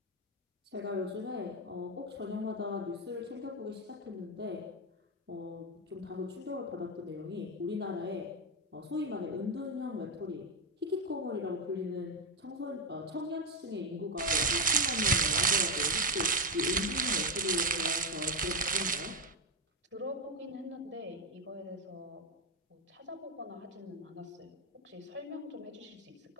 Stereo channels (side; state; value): both; normal; correlation 0.07